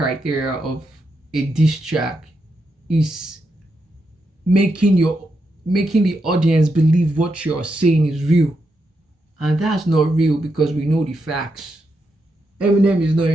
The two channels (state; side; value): normal; both; correlation 0.83